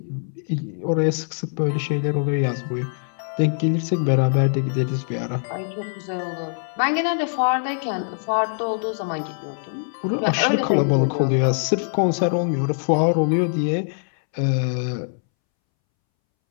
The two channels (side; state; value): right; silent; 64 dB below the other